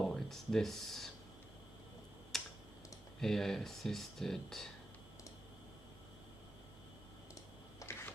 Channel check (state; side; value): normal; both; correlation 0.89